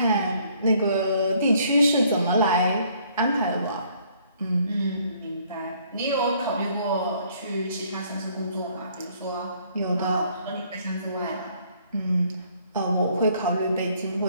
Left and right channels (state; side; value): inverted; both; correlation -0.63